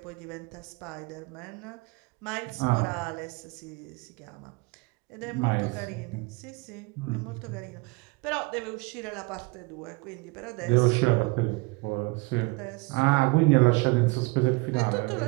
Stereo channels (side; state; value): left; quieter; 26.5 dB